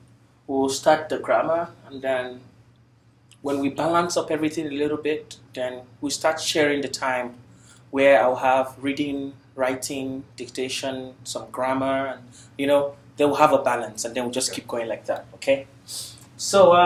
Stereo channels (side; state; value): both; identical; correlation 1.00